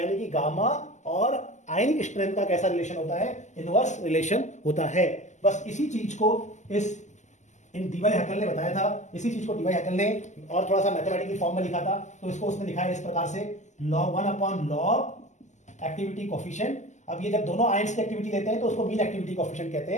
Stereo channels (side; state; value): right; late; 0.34 ms